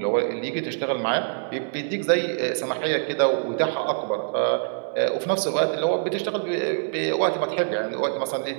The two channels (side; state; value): left; silent; digital silence